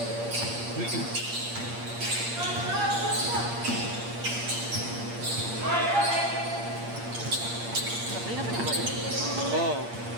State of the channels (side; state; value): left; late; 8.6 ms